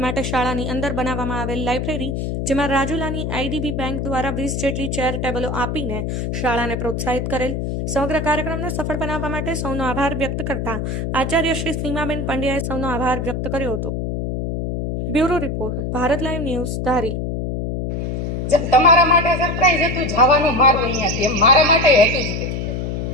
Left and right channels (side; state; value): left; noise; hum, 2 dB below the sound